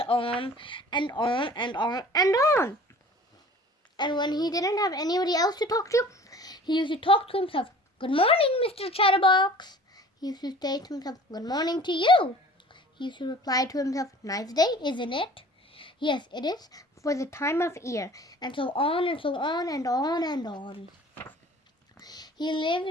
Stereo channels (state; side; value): normal; both; correlation 0.46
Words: on and on and on and on. And when he didn't have anybody else to talk to, he used to talk to himself. "Good morning, Mr. Chatterbox." He used to say to himself, "Good morning to you." He used to reply to himself, "Nice day, isn't it?" "Yes, it is, for the time of year," and so on and so on and on and on. He lived